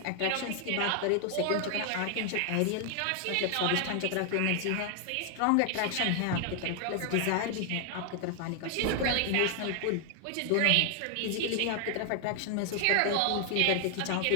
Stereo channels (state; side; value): different; both; correlation 0.00